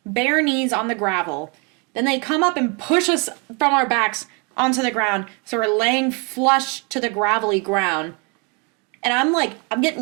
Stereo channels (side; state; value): left; quieter; 33.1 dB